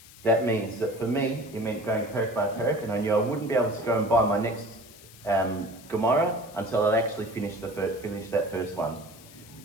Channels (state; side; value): noise; left; hiss, 21 dB below the sound